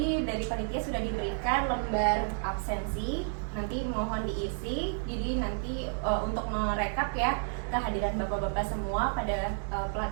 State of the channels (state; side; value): silent; left; digital silence